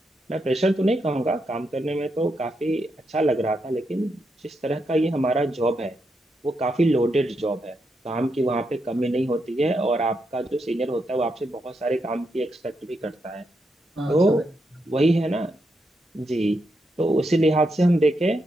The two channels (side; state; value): both; normal; correlation 0.82